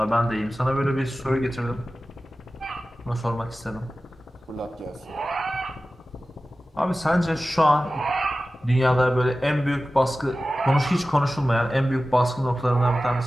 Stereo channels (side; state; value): both; normal; correlation 0.95